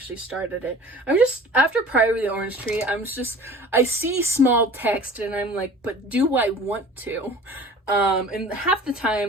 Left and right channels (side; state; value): both; normal; correlation 0.43